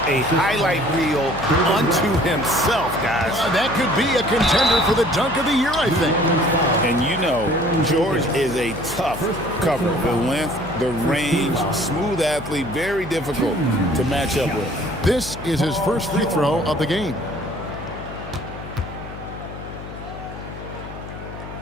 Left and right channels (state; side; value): noise; left; hum, 12 dB below the sound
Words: a highlight reel unto himself, guys. That could be a contender for the dunk of the year, I think. And you know, George is a tough cover. The length, the range, smooth athlete, very difficult to match up with. This is his first free throw of the game.